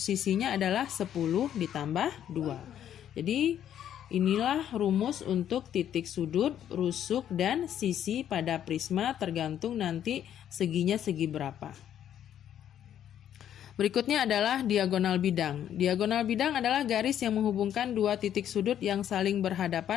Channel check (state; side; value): quieter; right; 10.3 dB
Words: sisinya adalah 10 ditambah 2. Jadi inilah rumus untuk titik sudut, rusuk, dan sisi pada prisma tergantung nanti seginya segi berapa. Berikutnya adalah diagonal bidang. Diagonal bidang adalah garis yang menghubungkan dua titik sudut yang saling